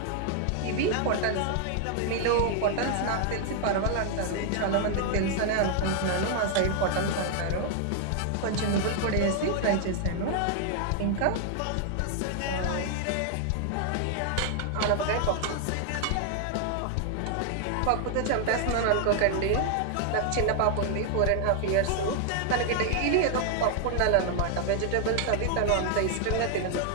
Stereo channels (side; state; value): both; different; correlation 0.00